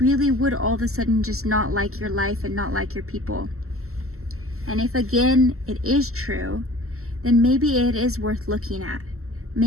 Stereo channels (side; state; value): left; late; 0.63 ms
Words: would all of a sudden just not like your life and not like your people? And if again it is true, then maybe it is worth looking at.